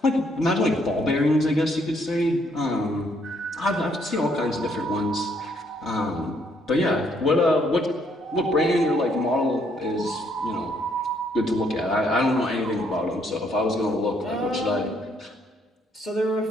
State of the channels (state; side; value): normal; both; correlation 0.69